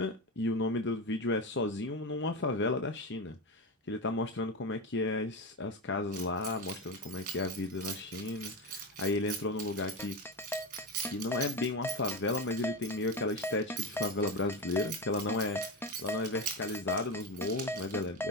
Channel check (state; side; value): normal; both; correlation 0.17